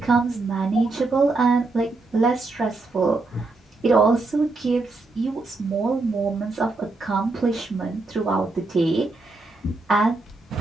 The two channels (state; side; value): quieter; left; 3.4 dB